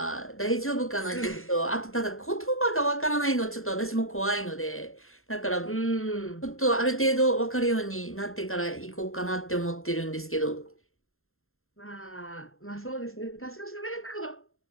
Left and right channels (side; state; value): right; late; 0.61 ms